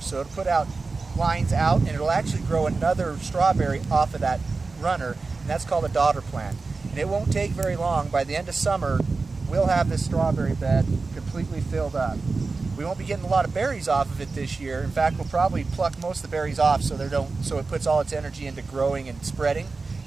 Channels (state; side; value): quieter; left; 4.0 dB